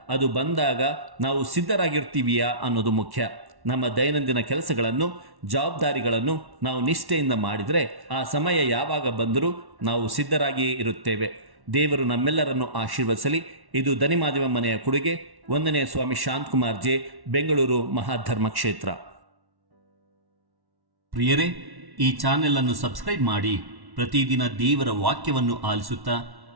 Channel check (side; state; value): left; late; 1.1 ms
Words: ಅದು ಬಂದಾಗ ನಾವು ಸಿದ್ಧರಾಗಿರ್ತೀವಿಯಾ ಅನ್ನೋದು ಮುಖ್ಯ. ನಮ್ಮ ದೈನಂದಿನ ಕೆಲಸಗಳನ್ನು, ಜವಾಬ್ದಾರಿಗಳನ್ನು ನಾವು ನಿಷ್ಠೆಯಿಂದ ಮಾಡಿದರೆ ಆ ಸಮಯ ಯಾವಾಗ ಬಂದರೂ ನಾವು ಸಿದ್ಧರಾಗಿಯೇ ಇರುತ್ತೇವೆ. ದೇವರು ನಮ್ಮೆಲ್ಲರನ್ನು ಆಶೀರ್ವದಿಸಲಿ. ಇದು ದನಿಮಾದಿವ ಮನೆಯ ಕೊಡುಗೆ. 1ನೇ ಸ್ವಾಮಿ ಶಾಂತಕುಮಾರ್ ಜೆ, ಬೆಂಗಳೂರು ಮಹಾಧರ್ಮ ಕ್ಷೇತ್ರ. ಪ್ರಿಯರೇ, ಈ ಚಾನೆಲ್ ಅನ್ನು ಸಬ್ಸ್ಕ್ರೈಬ್ ಮಾಡಿ ಪ್ರತಿದಿನ ದೇವರ ವಾಕ್ಯವನ್ನು ಆಲಿಸುತ್ತಾ